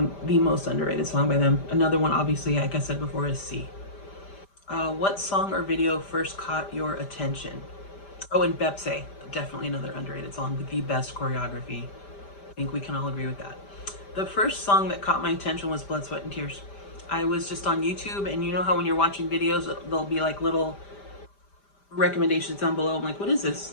most underrated song by them. Another one, obviously, like I said before, is C. What song or video first caught your attention? Oh, and Bepse, definitely another underrated song with the best choreography. I think we can all agree with that. The first song that caught my attention was Blood, Sweat, and Tears. I was just on YouTube, and you know how when you're watching videos, there'll be like little recommendations down below. I'm like, what is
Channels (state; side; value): late; right; 5.0 ms